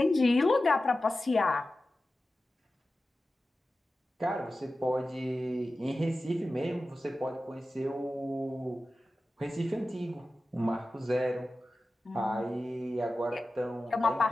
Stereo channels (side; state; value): both; normal; correlation 0.94